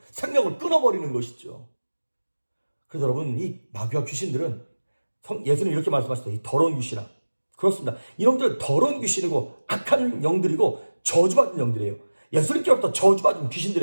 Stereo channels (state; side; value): inverted; both; correlation -1.00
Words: 생명을 끊어버리는 것이죠. 그래서 여러분, 이 마귀와 귀신들은 예수님 이렇게 말씀하셨어요. 이 더러운 귀신아. 그렇습니다. 이놈들은 더러운 귀신이고 악한 영들이고 저주받은 영들이에요. 예수님께로부터 저주받은